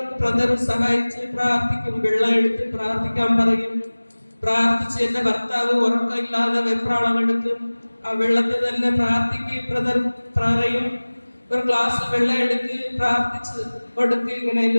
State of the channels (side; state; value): both; inverted; correlation -1.00